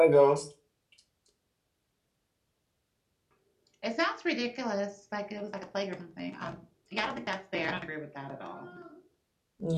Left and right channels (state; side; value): identical; both; correlation 1.00